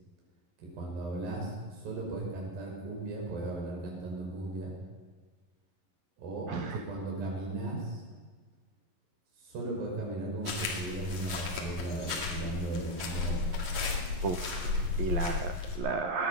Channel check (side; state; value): left; late; 11 ms